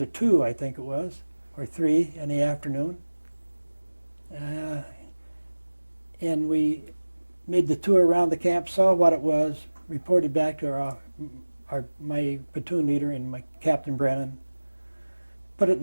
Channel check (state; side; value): inverted; both; correlation -1.00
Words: 2, I think it was, or 3 in the afternoon. And we made the tour around the camp, saw what it was, reported back to my platoon leader and my Captain Brennan, put it